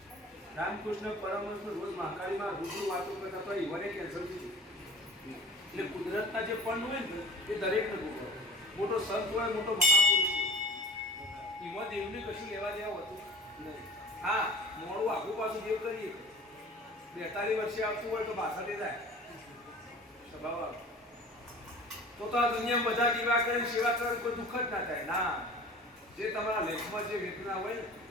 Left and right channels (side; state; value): both; normal; correlation 0.43